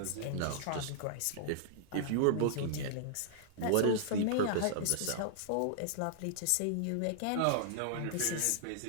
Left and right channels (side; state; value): both; different; correlation -0.01